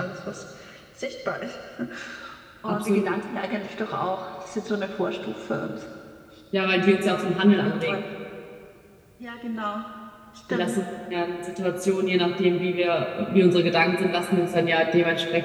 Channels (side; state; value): both; identical; correlation 1.00